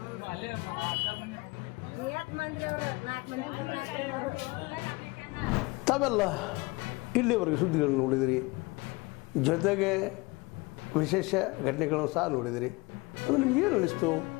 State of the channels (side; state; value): right; quieter; 24.6 dB